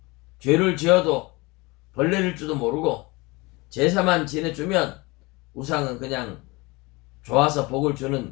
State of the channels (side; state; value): right; quieter; 24.4 dB